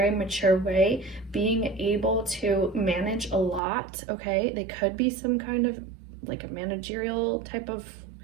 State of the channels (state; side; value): drops out; left; at 3.6 s